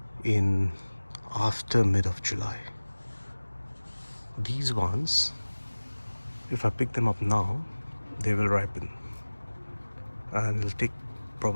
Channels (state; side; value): inverted; both; correlation -1.00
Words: in after mid of July. These ones, if I pick them up now, they will ripen, and it'll take